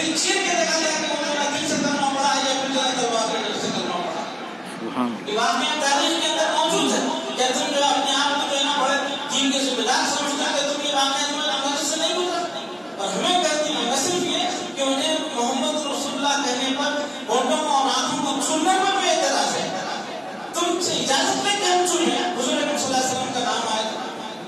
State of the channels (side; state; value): both; identical; correlation 1.00